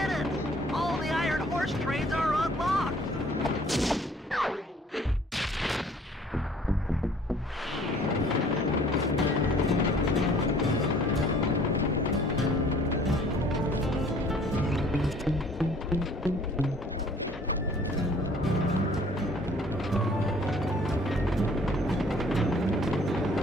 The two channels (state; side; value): normal; both; correlation 0.55